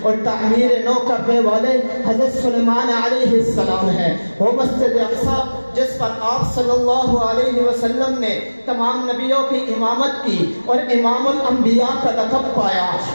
اور تعمیر نو کرنے والے حضرت سلیمان علیہ السلام ہے۔ وہ مسجد اقصی جس پر آپ صلی اللہ علیہ وسلم نے تمام نبیوں کی امامت کی اور امام الانبیاء کا لقب پایا،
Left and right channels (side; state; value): both; inverted; correlation -1.00